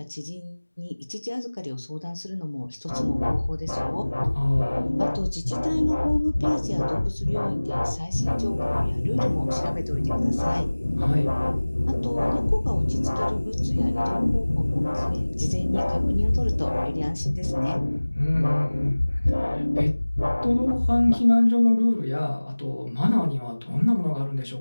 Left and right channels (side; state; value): both; inverted; correlation -1.00